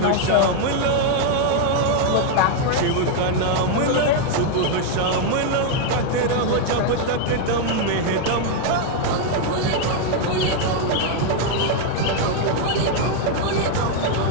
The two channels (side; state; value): both; different; correlation 0.00